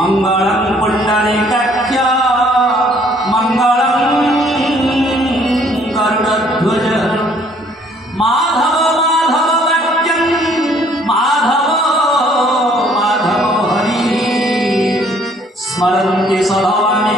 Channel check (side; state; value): both; normal; correlation 0.61